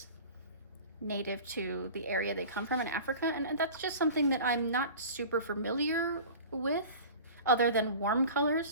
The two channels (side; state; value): both; inverted; correlation -0.38